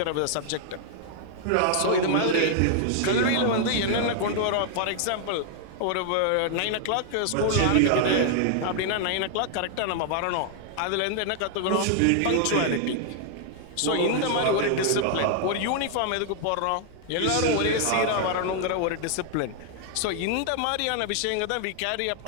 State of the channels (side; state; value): both; different; correlation 0.00